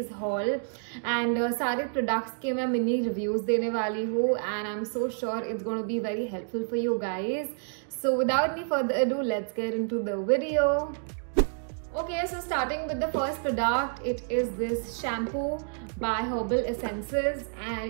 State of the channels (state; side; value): silent; left; digital silence